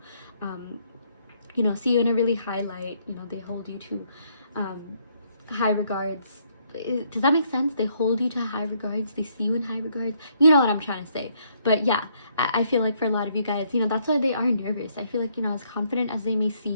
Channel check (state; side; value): inverted; both; correlation -0.70